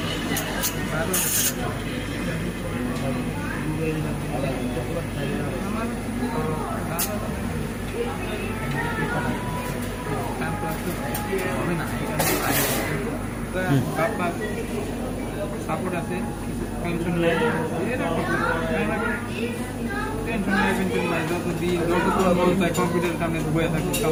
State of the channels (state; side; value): identical; both; correlation 1.00